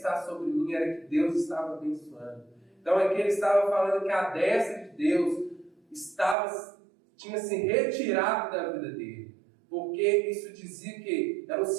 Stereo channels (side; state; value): left; drops out; at 6.4 s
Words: sobre mim, era que Deus estava abençoando. Então, aqui ele estava falando que a destra de Deus tinha se retirado da vida dele. Porque isso dizia que era um